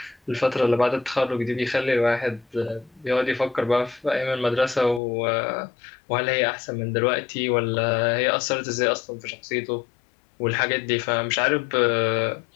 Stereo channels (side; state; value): right; drops out; at 5.0 s